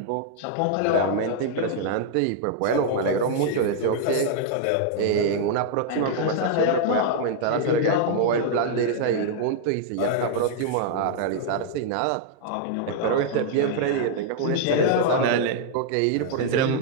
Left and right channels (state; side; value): different; both; correlation -0.01